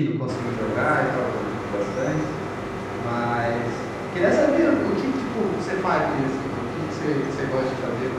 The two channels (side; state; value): both; identical; correlation 1.00